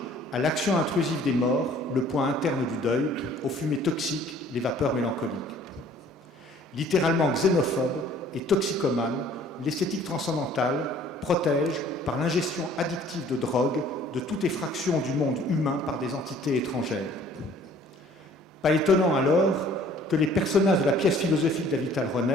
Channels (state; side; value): normal; both; correlation 0.54